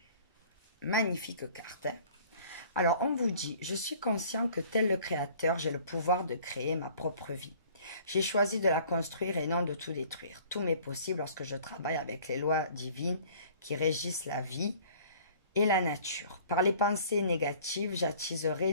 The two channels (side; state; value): both; inverted; correlation -0.52